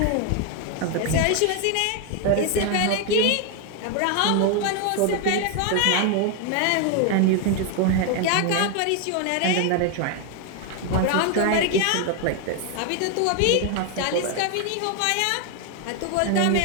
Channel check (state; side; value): different; both; correlation 0.01